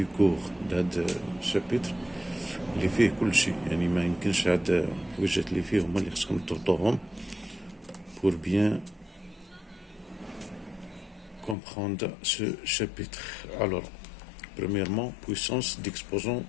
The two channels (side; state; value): right; drops out; at 11.6 s